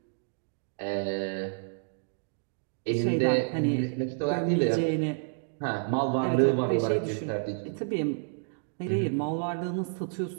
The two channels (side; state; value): left; silent; digital silence